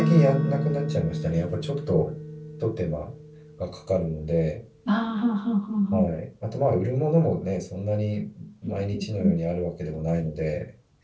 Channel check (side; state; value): both; identical; correlation 1.00